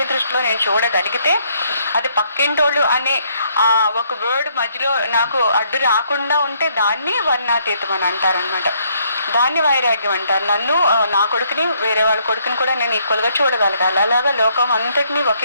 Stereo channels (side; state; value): both; inverted; correlation -0.69